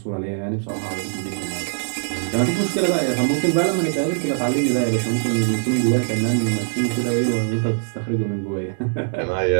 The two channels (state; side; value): silent; left; 64 dB below the other